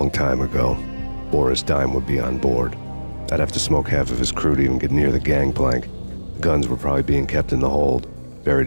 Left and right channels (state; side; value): inverted; both; correlation -1.00